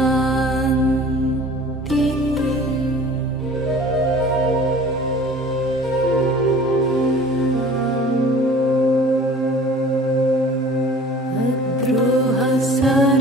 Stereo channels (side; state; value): both; normal; correlation 0.46